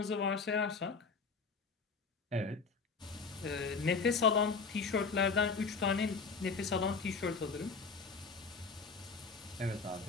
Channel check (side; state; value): right; quieter; 4.7 dB